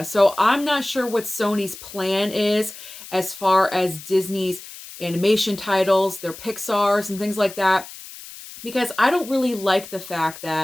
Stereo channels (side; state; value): left; noise; hiss, 15 dB below the sound